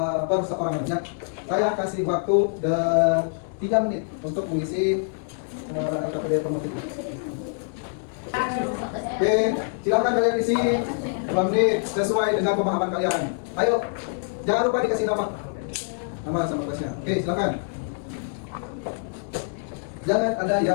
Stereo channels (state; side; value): silent; right; 59 dB below the other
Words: per seorang aja. Saya kasih waktu 3 menit untuk mengisi KPD formatif ini. Oke, silakan kalian isi 2 menit sesuai dengan pemahaman kalian. Ayo, jangan lupa dikasih nama sama kelasnya. Oke, silakan. Jangan ada